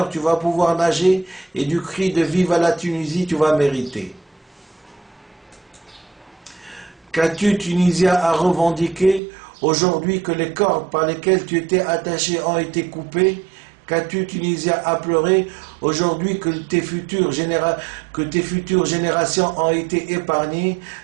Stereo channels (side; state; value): left; drops out; at 9.2 s